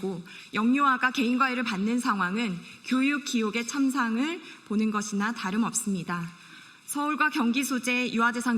영유아가 개인과외를 받는 상황은 교육 기옥의 참상을 보는 것이나 다름없습니다. 서울과 경기 소재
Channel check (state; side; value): identical; both; correlation 1.00